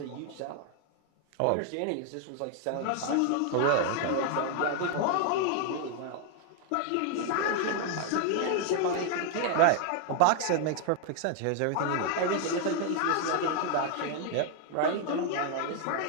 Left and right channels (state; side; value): different; both; correlation 0.00